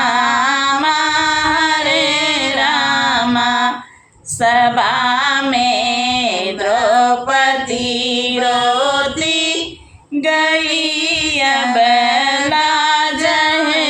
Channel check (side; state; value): both; identical; correlation 1.00